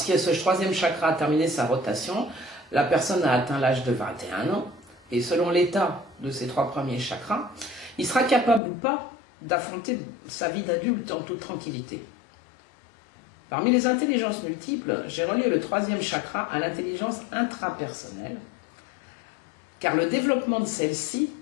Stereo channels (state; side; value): drops out; right; at 8.6 s